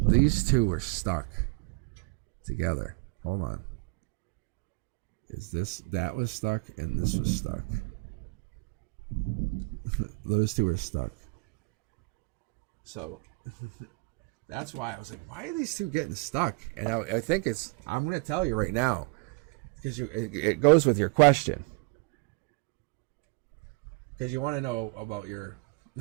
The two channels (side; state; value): left; quieter; 31.0 dB